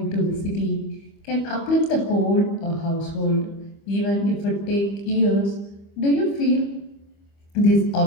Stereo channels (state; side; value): late; right; 25 ms